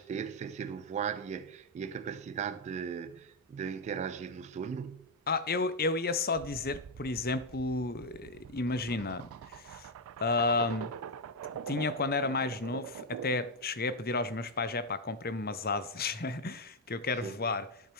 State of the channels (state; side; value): normal; both; correlation 0.03